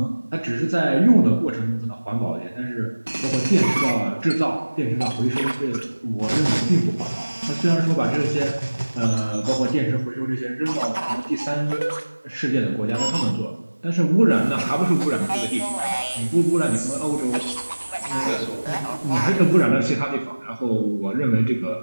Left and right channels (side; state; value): both; inverted; correlation -1.00